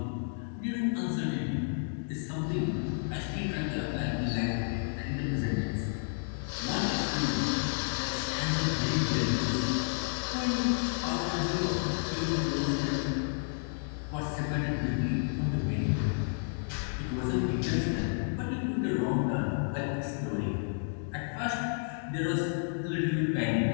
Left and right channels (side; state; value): right; silent; digital silence